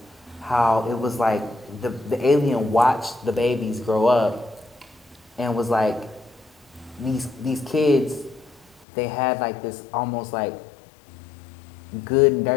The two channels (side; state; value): right; drops out; at 8.8 s